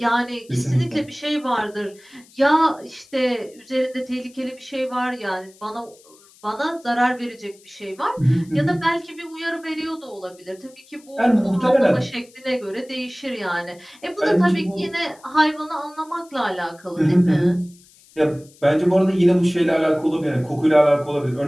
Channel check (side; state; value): left; noise; hiss, 27 dB below the sound